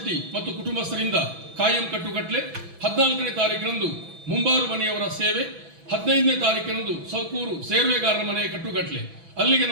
ಮತ್ತು ಕುಟುಂಬಸ್ಥರಿಂದ ಕಾಯಂ ಕಟ್ಟುಕಟ್ಲೆ, 14ನೇ ತಾರೀಕಿನಂದು ಮುಂಬಾರು ಮನೆಯವರ ಸೇವೆ, 15ನೇ ತಾರೀಕಿನಂದು ಸೌಕೂರು ಸೇರ್ವೆಗಾರರ ಮನೆಯ ಕಟ್ಟುಕಟ್ಲೆ. ಅಲ್ಲಿಗೆ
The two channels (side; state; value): left; late; 6.0 ms